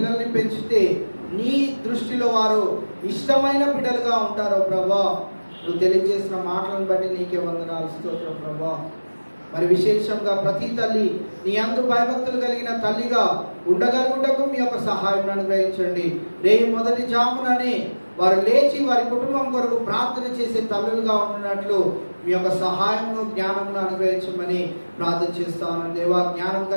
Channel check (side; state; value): both; inverted; correlation -1.00